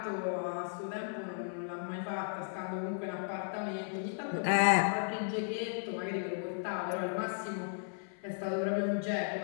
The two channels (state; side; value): silent; right; 54 dB below the other